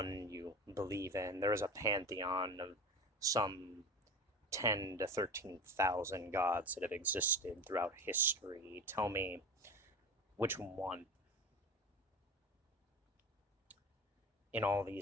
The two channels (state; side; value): normal; both; correlation 0.30